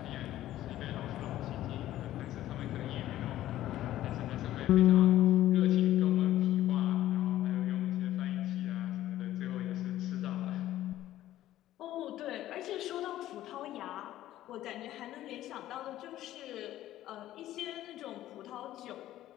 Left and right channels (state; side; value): quieter; right; 13.8 dB